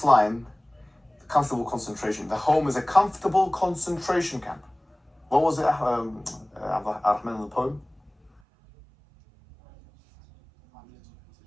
line, comfortable concentration, the home is a comfortable concentration camp. What was it, Ar-Rahman in the poem?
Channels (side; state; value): left; drops out; at 8.4 s